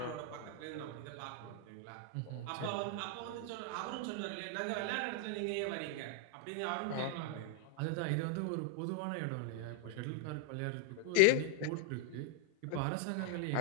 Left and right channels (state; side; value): different; both; correlation 0.00